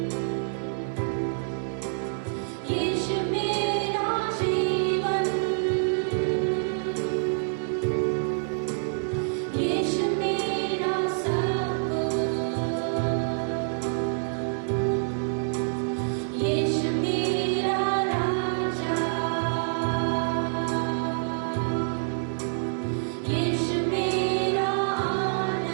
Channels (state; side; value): silent; left; 60 dB below the other